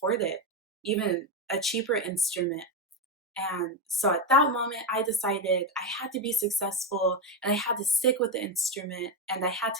it, even a cheaper instrument. And so at that moment, I decided I had to be successful, and I had to stick with the instrument, and I had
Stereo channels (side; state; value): both; normal; correlation 0.11